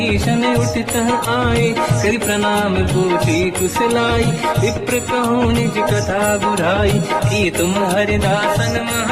उठित आए। करि प्रणाम पूछी कुशलाई विप्र कहूँ निज कथा बुराई। कि तुम हरिदासन मह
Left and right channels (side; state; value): both; identical; correlation 1.00